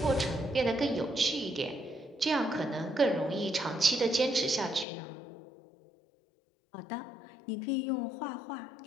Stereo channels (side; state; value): right; drops out; at 4.9 s